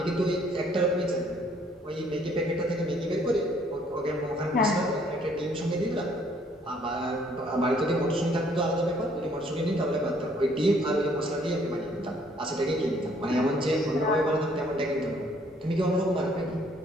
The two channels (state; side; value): normal; both; correlation 0.63